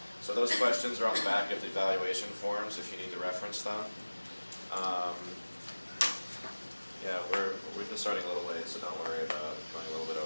So those questions are on the back of the evaluation forms if you need to reference them. Yeah, we're just starting a little late, so don't worry about going a little bit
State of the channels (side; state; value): both; inverted; correlation -1.00